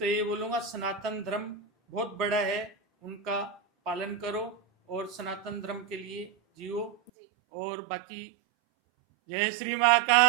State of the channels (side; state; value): left; drops out; at 7.1 s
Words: ये बोलूंगा सनातन धर्म बहुत बड़ा है, उनका पालन करो और सनातन धर्म के लिए जियो। जी, और बाकी जय श्री